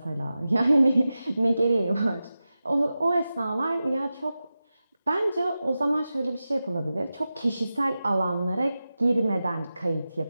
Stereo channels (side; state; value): both; inverted; correlation -0.94